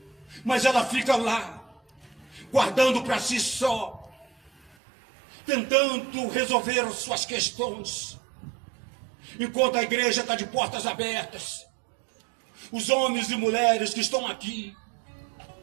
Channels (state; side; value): drops out; left; at 4.8 s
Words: mas ela fica lá, guardando para si só, tentando resolver as suas questões, enquanto a igreja está de portas abertas. Os homens e mulheres que estão aqui,